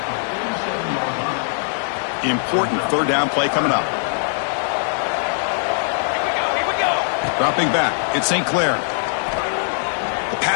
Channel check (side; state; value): right; silent; 64 dB below the other